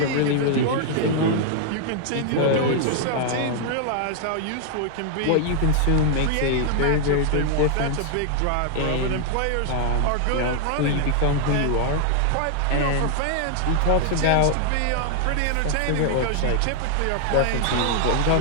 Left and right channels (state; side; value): different; both; correlation 0.00